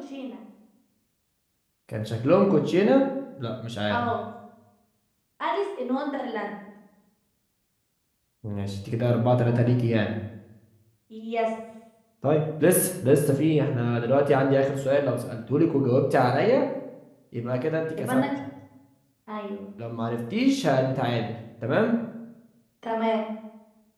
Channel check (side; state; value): both; identical; correlation 1.00